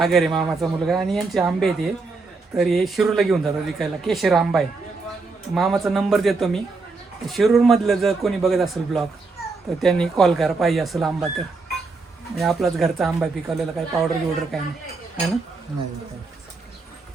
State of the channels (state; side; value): quieter; left; 4.0 dB